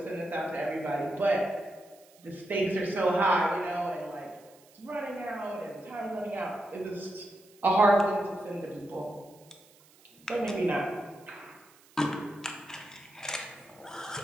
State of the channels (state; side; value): noise; right; hiss, 27 dB below the sound